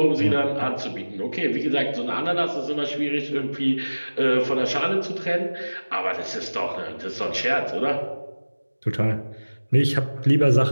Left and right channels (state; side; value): inverted; both; correlation -1.00